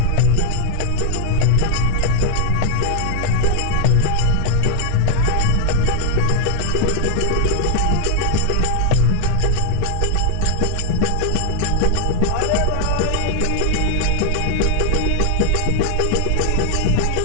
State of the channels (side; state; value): both; different; correlation 0.00